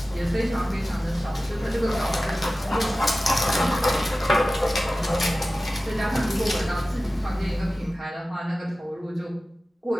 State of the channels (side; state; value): both; normal; correlation 0.96